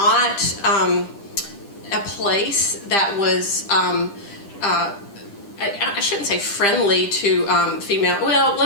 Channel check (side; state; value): right; late; 10 ms